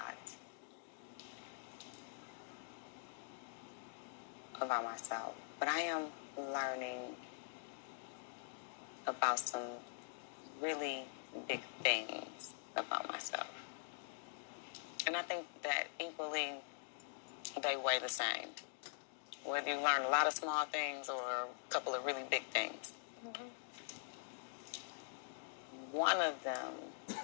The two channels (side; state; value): right; silent; digital silence